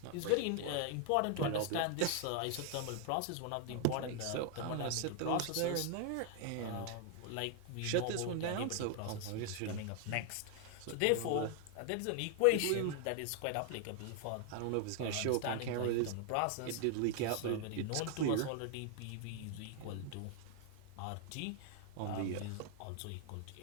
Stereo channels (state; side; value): different; both; correlation 0.00